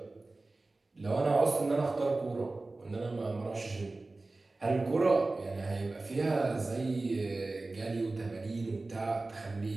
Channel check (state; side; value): quieter; left; 3.2 dB